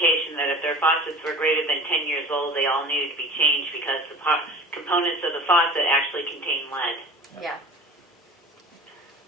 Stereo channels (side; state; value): both; normal; correlation 0.39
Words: that if their faucets were greater than 10 years old, they all needed to be changed because the components of the faucet actually contain lead. Yeah.